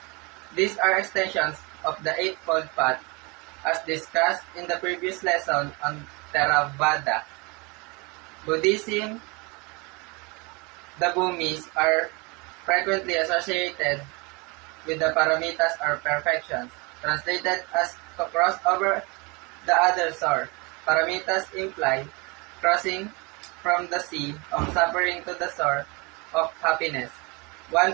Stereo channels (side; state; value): left; quieter; 28.1 dB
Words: These are extensions of the Eightfold Path, as discussed in the previous lesson on Theravada. Buddhism, the bumis are frequently associated with the paramitas or perfections, translated as to cross over the other shore. Paramitas imply crossing from the sea of suffering to the shore of happiness. One